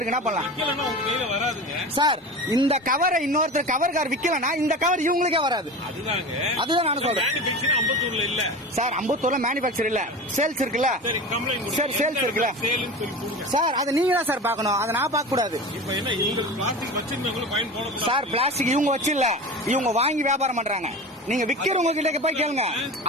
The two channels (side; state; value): both; normal; correlation 0.31